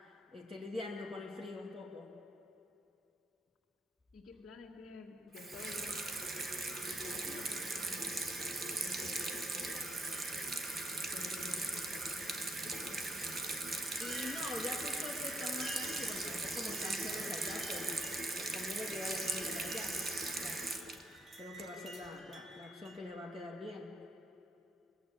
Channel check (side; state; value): both; normal; correlation 0.75